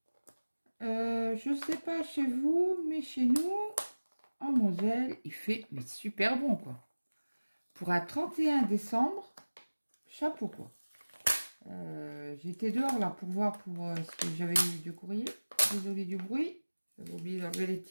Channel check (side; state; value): both; inverted; correlation -1.00